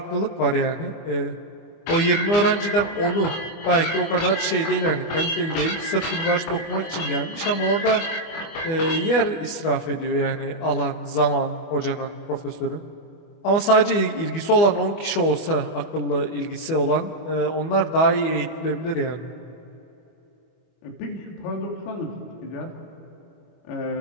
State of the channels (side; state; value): right; late; 25 ms